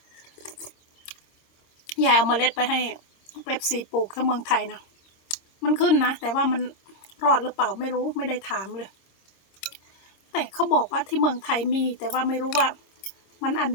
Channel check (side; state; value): right; late; 26 ms